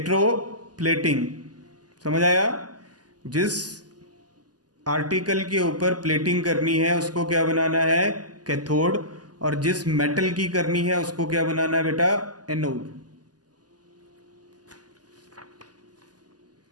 समझ आया। जिस आर्टिकल के ऊपर प्लेटिंग करनी है उसको क्या बनाना है, कैथोड, और जिस मेटल की करनी है उसको क्या बनाना है बेटा, anode.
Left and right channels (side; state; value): left; late; 0.69 ms